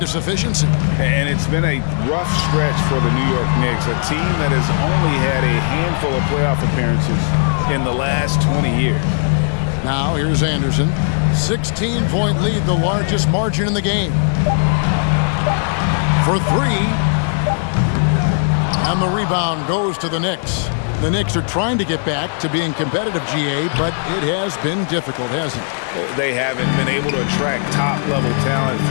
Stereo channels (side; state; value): right; silent; digital silence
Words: efficiency. And it's been a rough stretch for the New York Knicks, a team that has only had a handful of playoff appearances in the last 20 years. Now, here's Anderson. 16-point lead, the largest margin in the game. For 3. And the rebound goes to the Knicks. The Knicks are trying to get back to being competitive, GA, but it has been difficult, hasn't it? They haven't been able to attract top-level talent